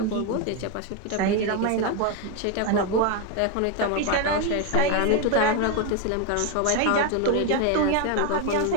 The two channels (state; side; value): different; both; correlation 0.02